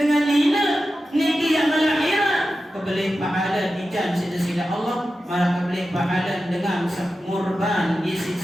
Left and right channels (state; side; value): normal; both; correlation 0.92